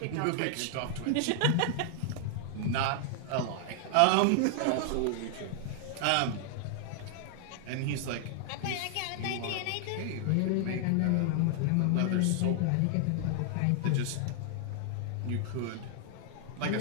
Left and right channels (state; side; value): different; both; correlation 0.00